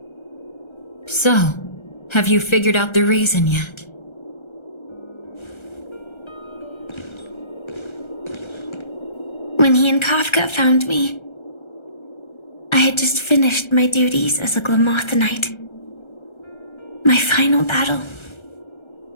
So, have you figured out the reason yet? When he and Kafka found me, I had just finished my duties as a Glamoth Knight. My final battle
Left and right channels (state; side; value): late; right; 1.3 ms